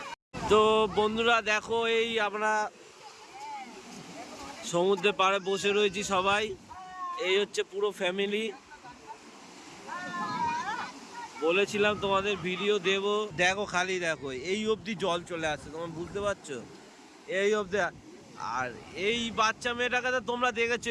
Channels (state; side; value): identical; both; correlation 1.00